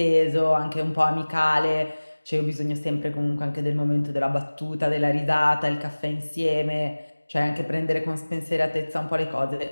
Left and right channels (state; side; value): inverted; both; correlation -1.00